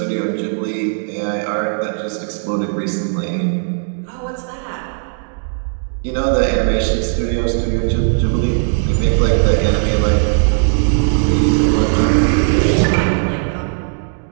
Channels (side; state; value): left; silent; digital silence